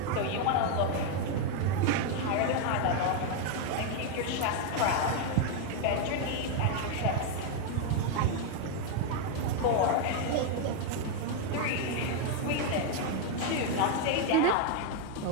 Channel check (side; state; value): both; different; correlation 0.01